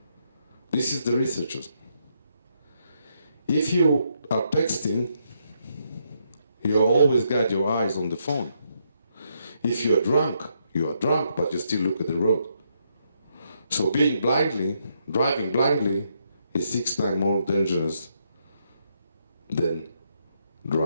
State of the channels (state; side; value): inverted; both; correlation -0.76